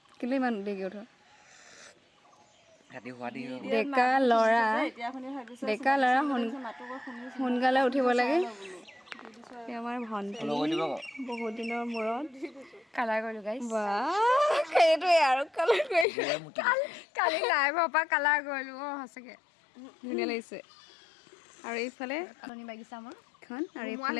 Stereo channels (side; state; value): right; drops out; at 16.1 s